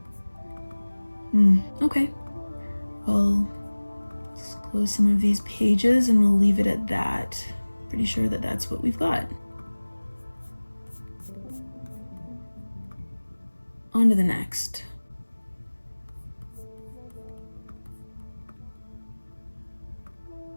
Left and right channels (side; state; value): both; inverted; correlation -1.00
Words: Okay. Well, let's close some of these pages and we'll leave it at that. Pretty sure that that's what we've got. On to the next.